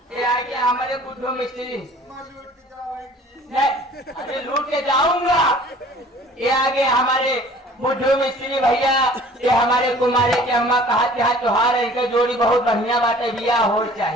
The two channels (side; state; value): both; normal; correlation 0.50